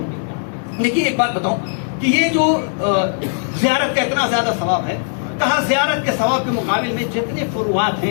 دیکھیے ایک بات بتاؤں کہ یہ جو زیارت کا اتنا زیادہ ثواب ہے، کہا زیارت کے ثواب کے مقابل میں جتنے فروعات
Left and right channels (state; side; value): silent; right; 63 dB below the other